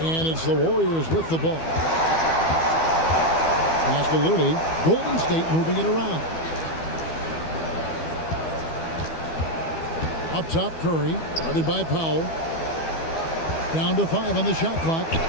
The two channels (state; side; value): late; right; 13 ms